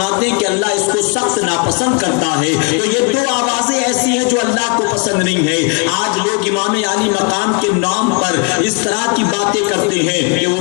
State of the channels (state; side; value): quieter; right; 33.8 dB